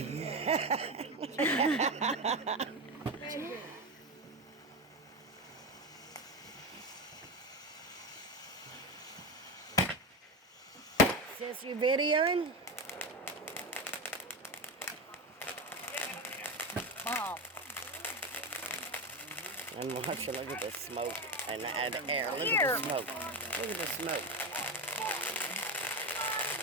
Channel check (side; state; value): both; normal; correlation 0.17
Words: Sis, you videoing? Mom. I'm watching. Look at the smoke and the air. Look at the smoke. Look at the smoke.